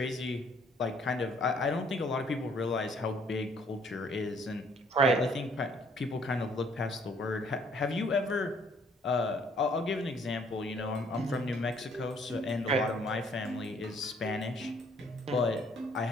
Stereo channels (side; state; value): both; normal; correlation 0.62